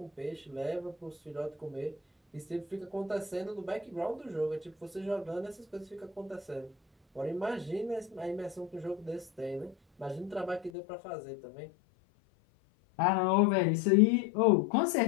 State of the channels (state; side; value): drops out; right; at 10.7 s